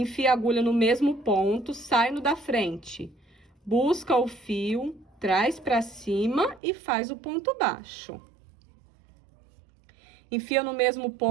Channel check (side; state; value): left; drops out; at 6.6 s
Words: a agulha no mesmo ponto, sai no da frente. Busca o fio, traz pra cima e faz o ponto baixo. Enfia no mesmo